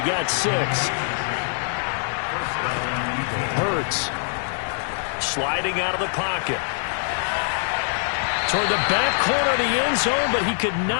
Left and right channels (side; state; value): right; silent; digital silence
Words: got 6. Hurts sliding out of the pocket. Toward the back corner of the end zone, but he could